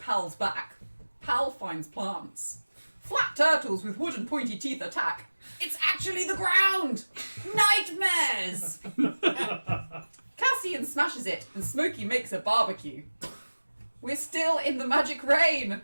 back. Pal finds plants. Flat turtles with wooden pointy teeth attack. It's actually the ground! Nightmares! Cassian smashes it and Smokey makes a barbecue. We're still in the magic rain!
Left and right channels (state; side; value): inverted; both; correlation -1.00